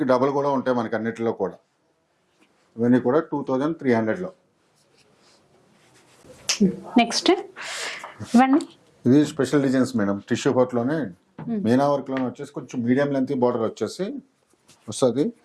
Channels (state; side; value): identical; both; correlation 1.00